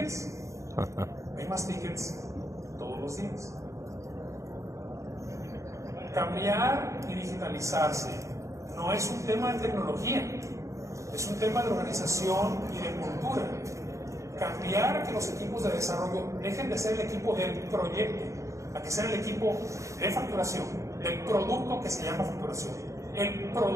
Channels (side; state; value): left; late; 0.15 ms